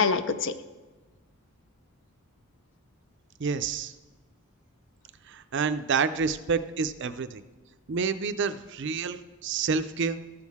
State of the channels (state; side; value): normal; both; correlation 0.03